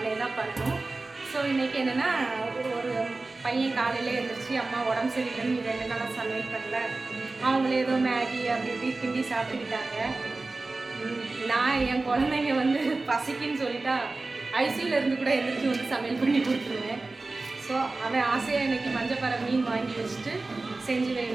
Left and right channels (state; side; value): quieter; left; 3.4 dB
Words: தான் பண்ணணும். ஸோ இன்றைக்கி என்னென்னா, ஒரு பையன் காலையில் எழுந்திரிச்சு அம்மா உடம்பு சரியில்லைன்னு 2 நாளாக சமையல் பண்ணல, அவங்களே ஏதோ மேகி அப்படி இப்படி கிண்டி சாப்பிட்டுக்கிட்டாங்க. நான் என் குழந்தைங்க வந்து பசிக்குன்னு சொல்லிட்டா ஐசியூவில் இருந்து கூட எழுந்திரிச்சு வந்து சமையல் பண்ணி கொடுத்துருவேன். ஸோ அவன் ஆசையாக இன்றைக்கி மஞ்சப்பாறை மீன் வாங்கி வச்சுட்டு செஞ்சு